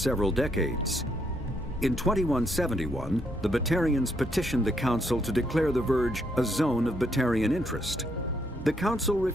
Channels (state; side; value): normal; both; correlation 0.74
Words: decades. In 2171, the Batarians petitioned the Council to declare the Verge a zone of Batarian interest. The Council